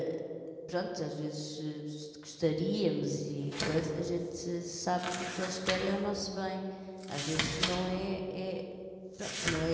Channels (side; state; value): both; identical; correlation 1.00